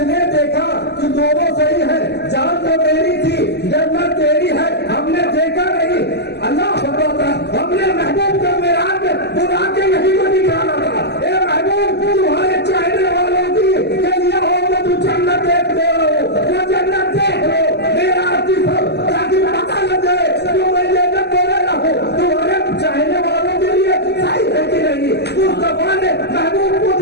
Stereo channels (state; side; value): late; right; 0.49 ms